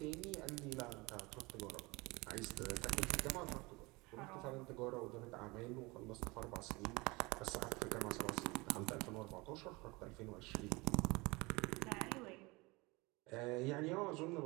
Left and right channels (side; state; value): left; quieter; 24.4 dB